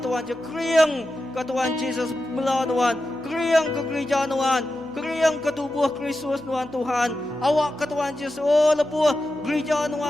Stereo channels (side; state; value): right; noise; hum, 28 dB below the sound